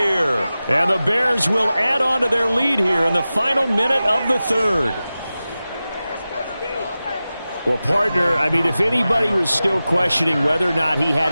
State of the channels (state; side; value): inverted; both; correlation -0.95